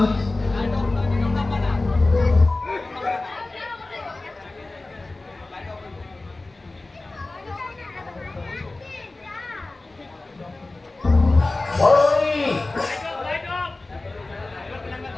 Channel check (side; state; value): right; quieter; 3.1 dB